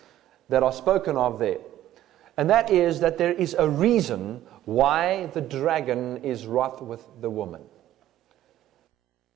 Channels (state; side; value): quieter; left; 13.1 dB